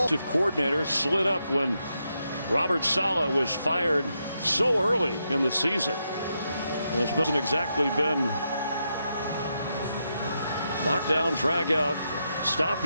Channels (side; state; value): both; inverted; correlation -0.83